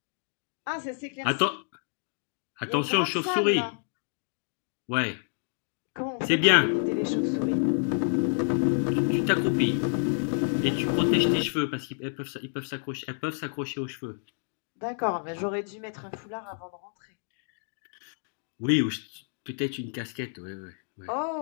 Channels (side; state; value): right; silent; digital silence